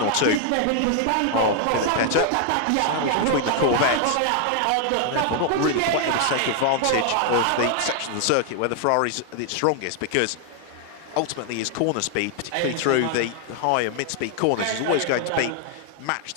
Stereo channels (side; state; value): both; different; correlation 0.00